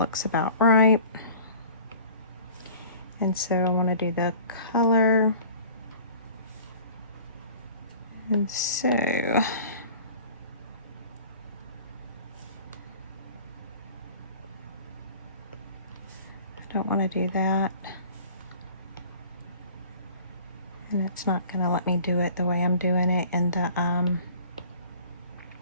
about right. And so I want to do the color. And so I don't want to do that. And it's not going to let me do it the way I'm doing it in the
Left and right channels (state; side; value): inverted; both; correlation -0.46